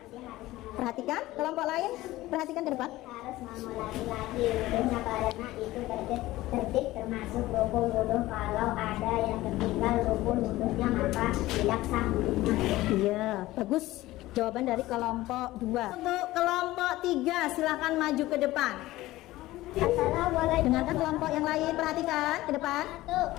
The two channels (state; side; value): quieter; right; 17.2 dB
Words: Perhatikan kelompok lain, perhatikan ke depan. Harus mengulangi lagi wudhunya karena itu tertib termasuk rukun wudhu. Kalau ada yang tertinggal rukun wudhunya maka tidak sah wudhunya. Iya, bagus. Jawaban dari kelompok 2. Untuk kelompok 3 silahkan maju ke depan. Assalamualaikum. Dengarkan kelompok yang lain, perhatikan ke depan.